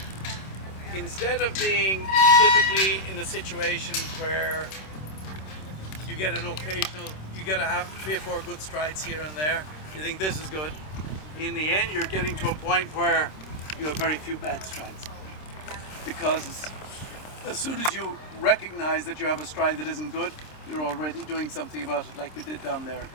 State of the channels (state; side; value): late; right; 26 ms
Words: instead of being typically in a situation where you get an occasional, you get to have 3 or 4 good strides here and there, you think this is good. In the end, you're getting to a point where you have very few bad strides. Because as soon as you recognize that you have a stride that isn't good, you're already doing something about it, like you did down there a